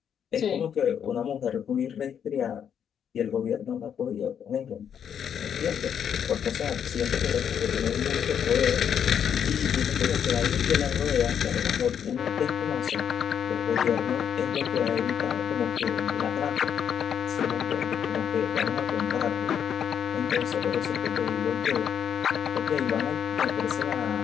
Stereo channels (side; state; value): right; quieter; 8.3 dB